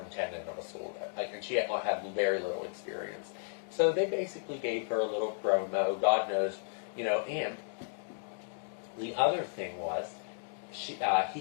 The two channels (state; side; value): silent; right; digital silence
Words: of a school. And she had very little experience. So they basically gave her a little promo, God knows, and the other thing was, he